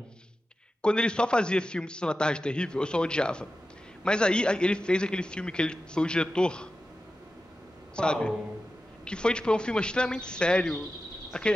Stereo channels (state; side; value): normal; both; correlation 0.93